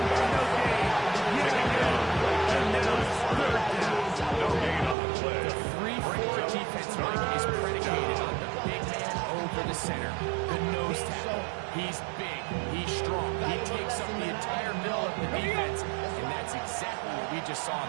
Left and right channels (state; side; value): drops out; left; at 5.0 s